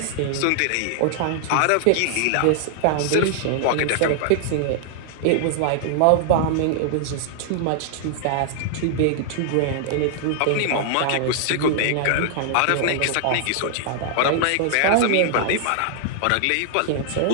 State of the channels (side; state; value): both; different; correlation -0.01